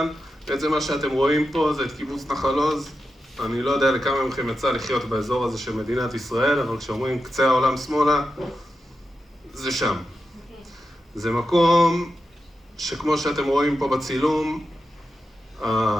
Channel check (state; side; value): normal; both; correlation 0.89